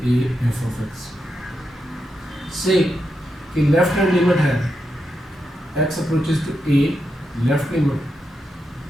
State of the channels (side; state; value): both; normal; correlation 0.85